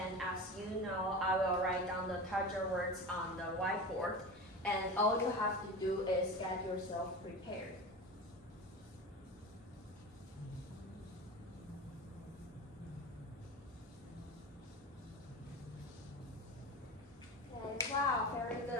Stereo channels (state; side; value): normal; both; correlation 0.29